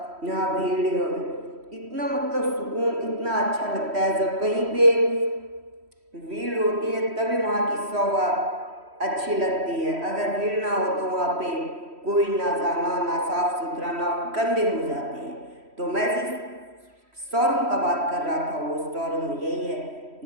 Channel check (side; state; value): left; late; 3.1 ms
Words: यहाँ भीड़, इतना मतलब सुकून, इतना अच्छा लगता है जब कहीं पे भीड़ होती है, तभी वहाँ की शोभा अच्छी लगती है। अगर भीड़ ना हो तो वहाँ पे कोई ना जाना, ना साफ सुथरा, ना गंदे हो जाते हैं। तो मैं जिस शोरूम का बात कर रहा था वो शोरूम यही है,